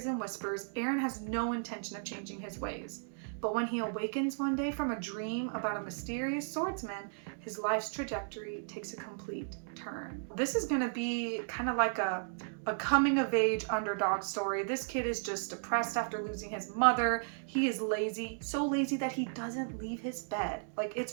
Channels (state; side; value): silent; left; digital silence